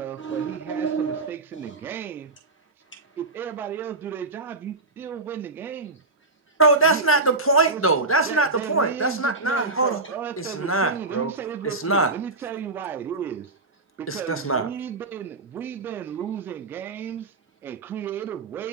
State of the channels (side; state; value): left; quieter; 3.3 dB